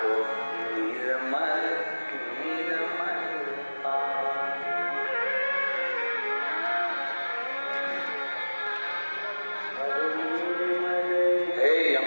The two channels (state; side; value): inverted; both; correlation -1.00